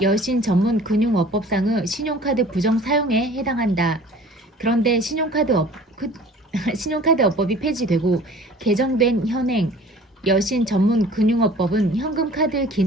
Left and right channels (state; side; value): normal; both; correlation 0.47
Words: 여신 전문 금융업법상의 신용카드 부정 사용에 해당한다. 그런데 신용카드업법이 폐지되고 개정된 현행 여신 전문 금융업법은 현금카드